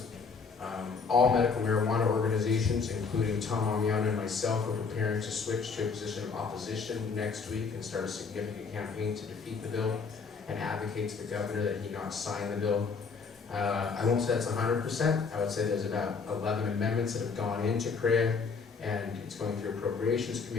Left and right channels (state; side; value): quieter; right; 5.1 dB